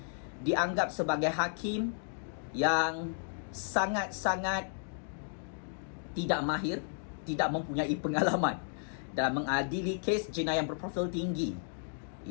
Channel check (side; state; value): right; silent; digital silence